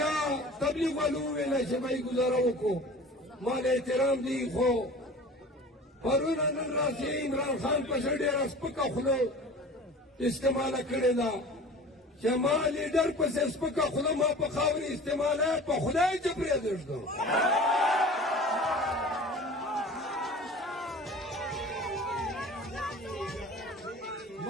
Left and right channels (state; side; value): normal; both; correlation 0.40